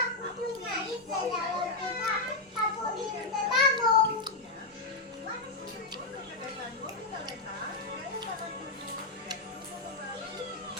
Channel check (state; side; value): quieter; right; 3.2 dB